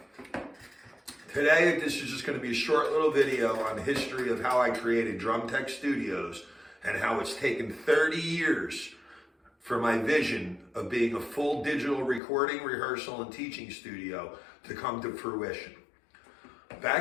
Today, this is just going to be a short little video on the history of how I created Drum Tech Studios and how it's taken 30 years for my vision of being a full digital recording, rehearsal, and teaching studio to come to fruition.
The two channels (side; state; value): right; drops out; at 12.2 s